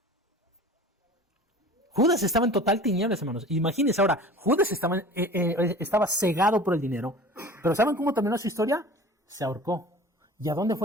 Judas estaba en total tinieblas, hermanos. Imagínense ahora, Judas estaba cegado por el dinero. Pero ¿saben cómo terminó su historia? Se ahorcó. ¿Y a dónde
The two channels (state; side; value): normal; both; correlation 0.41